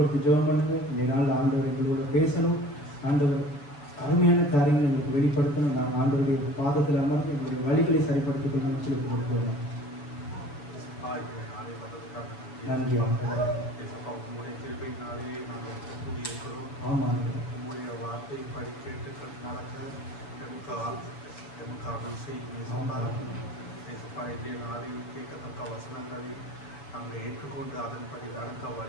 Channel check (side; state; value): right; late; 7.0 ms